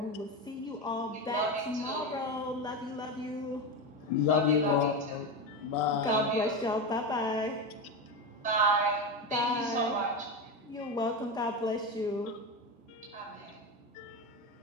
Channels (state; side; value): normal; both; correlation 0.18